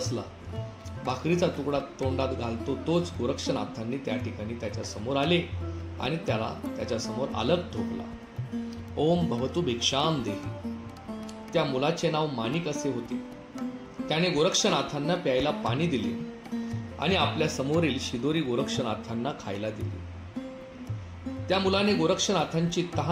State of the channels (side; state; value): both; identical; correlation 1.00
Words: भाकरीचा तुकडा तोंडात घालतो तोच गोरक्षनाथांनी त्या ठिकाणी त्याच्या समोर आले आणि त्याला त्याच्या समोर अलग ठोकला. ओम भवतु भिक्षाम देही. त्या मुलाचे नाव माणिक असे होते. त्याने गोरक्षनाथांना प्यायला पाणी दिले आणि आपल्या समोरील शिदोरी गोरक्षनाथांना खायला दिली. त्या मुलाने गोरक्षनाथांची